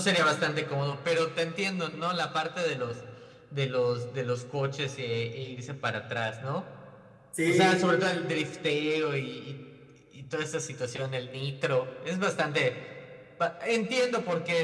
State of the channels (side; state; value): both; identical; correlation 1.00